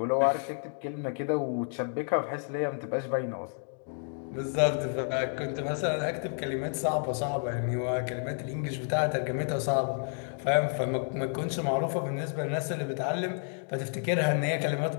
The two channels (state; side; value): silent; right; 58 dB below the other